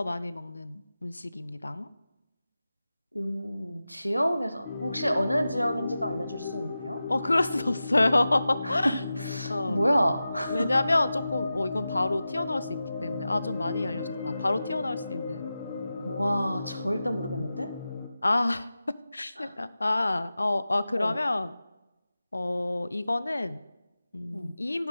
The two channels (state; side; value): inverted; both; correlation -0.94